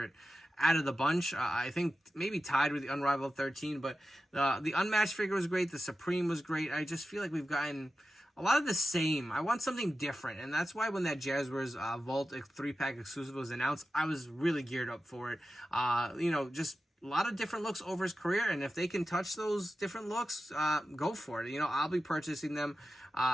out of the bunch. I think maybe tied with the Unrivaled 13, but the Unmatched figure was great. The Supreme was great. I just feel like we've gotten a lot of the same. I want something different, and that's why when that Jazwares Vault 3-pack exclusive was announced, I was really geared up for it. You know, just a lot of different looks over his career, and if they can touch those different looks, go for it. You know, I'll be purchasing them.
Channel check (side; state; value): both; normal; correlation 0.93